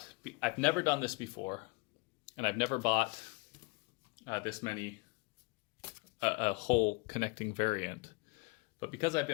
I've never done this before, and I've never bought this many, a whole connecting variant. But because I've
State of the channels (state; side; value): quieter; right; 28.7 dB